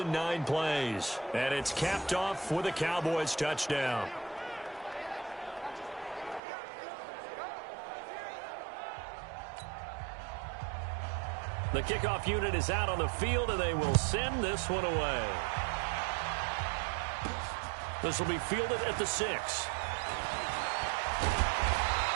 9 plays. And it's capped off with a Cowboys touchdown. The kickoff unit is out on the field, and they will send this one away. This will be fielded at the 6.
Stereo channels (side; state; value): left; drops out; at 6.4 s